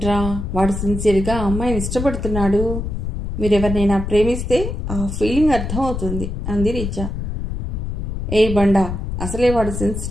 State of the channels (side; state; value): left; noise; rumble, 4 dB below the sound